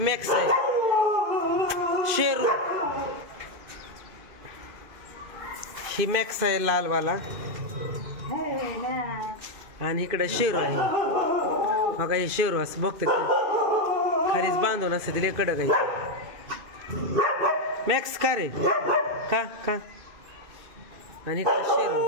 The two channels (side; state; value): left; late; 2.5 ms